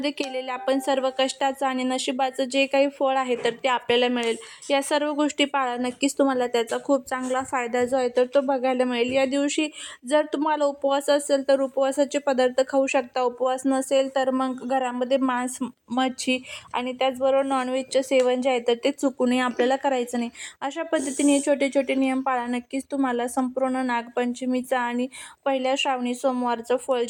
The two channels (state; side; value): identical; both; correlation 1.00